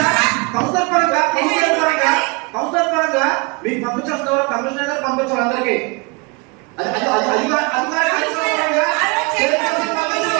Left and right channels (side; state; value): left; quieter; 30.0 dB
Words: కౌన్సిలర్ పరంగా మీకు పంపించేస్తున్నారు. కమిషనర్ గారు పంపించారు అందరికి.